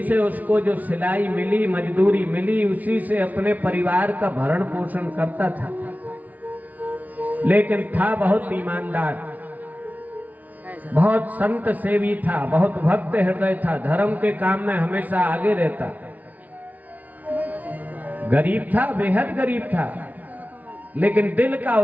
से उसको जो सिलाई मिली, मजदूरी मिली, उसी से अपने परिवार का भरण पोषण करता था। लेकिन था बहुत ईमानदार, बहुत संत सेवी था, बहुत भक्त हृदय था, धर्म के काम में हमेशा आगे रहता। गरीब था, बेहद गरीब था, लेकिन दिल का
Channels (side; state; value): left; late; 0.075 ms